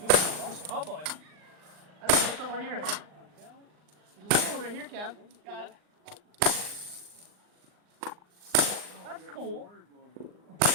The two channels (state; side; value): late; left; 39 ms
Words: that. Oh boy. I don't know what's over here. There's another one right here, Kev. Got it. That's cool.